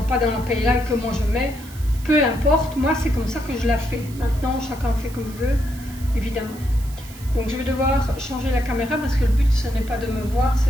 pas dans la paella et que moi je mets. Peu importe, moi c'est comme ça que je la fais. Maintenant chacun fait comme il veut, évidemment. Donc je vais devoir changer la caméra parce que le but ce n'est pas de me voir,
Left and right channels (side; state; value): right; noise; hiss, 19 dB below the sound